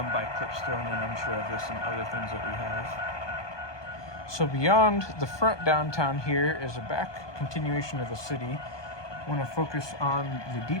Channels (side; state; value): right; late; 1.2 ms